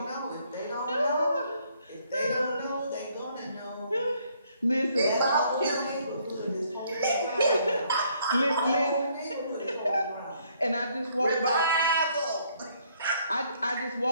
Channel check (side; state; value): both; inverted; correlation -0.67